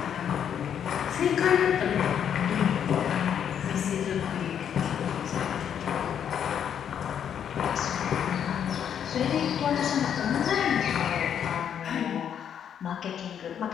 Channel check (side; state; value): right; quieter; 8.7 dB